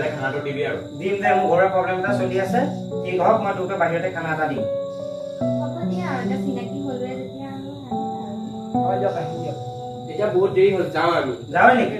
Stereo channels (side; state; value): both; identical; correlation 1.00